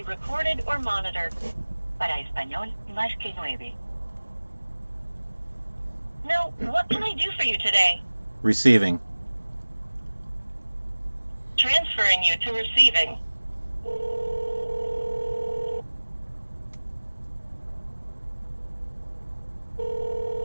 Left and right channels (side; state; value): both; inverted; correlation -1.00